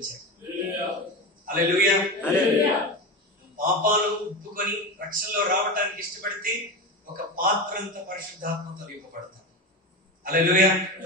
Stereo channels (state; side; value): normal; both; correlation 0.23